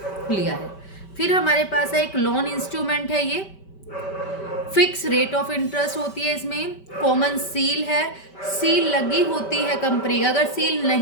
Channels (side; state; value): right; late; 5.2 ms